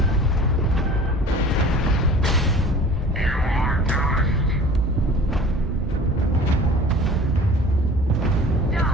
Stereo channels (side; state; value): both; normal; correlation 0.44